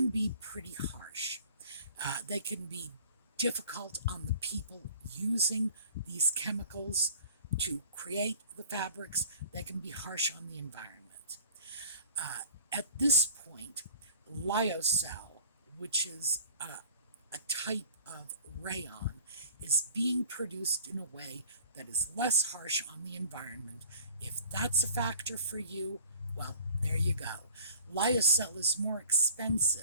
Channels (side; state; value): both; inverted; correlation -0.48